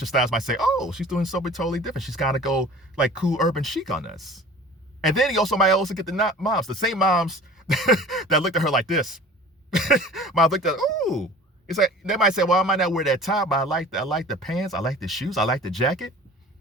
styles might say, oh, she's doing something totally different. She's got to go like cool urban chic on us. And then you also might also get the moms, the same moms that looked at her like this. Might looked at, oh, it's like, they might say, well, I might not wear that top, but I like the pants, I like the shoes, I like the jacket.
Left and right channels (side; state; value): both; normal; correlation 0.43